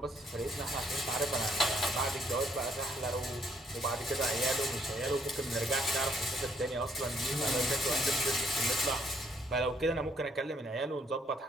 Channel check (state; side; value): normal; both; correlation 0.68